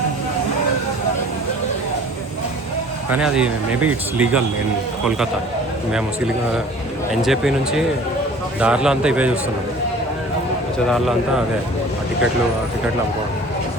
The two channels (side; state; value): both; normal; correlation 0.47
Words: కానీ అది maybe it's legal in Kolkata. మేము ఎన్జేపీ నుంచి దారిలో అంతా ఇవే చూస్తున్నాం. వచ్చే దారిలో అంతా అదే ఆ టికెట్లు అమ్ముకోవడం.